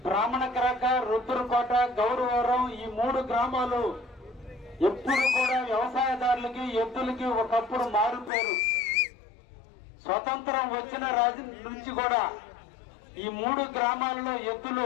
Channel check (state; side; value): drops out; right; at 8.3 s